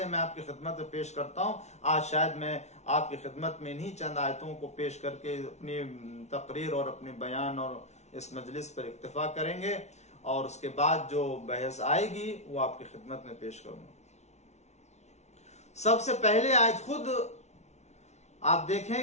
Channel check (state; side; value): late; right; 0.32 ms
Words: میں آپ کی خدمت میں پیش کرتا ہوں. آج شاید میں آپ کی خدمت میں انہی چند آیتوں کو پیش کر کے اپنی تقریر اور اپنے بیان اور اس مجلس پر اکتفا کریں گے، اور اس کے بعد جو بحث آئے گی وہ آپ کی خدمت میں پیش کروں گا. سب سے پہلے آیت خود آپ